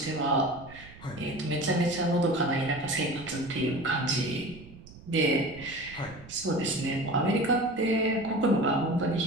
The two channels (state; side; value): noise; right; rumble, 19 dB below the sound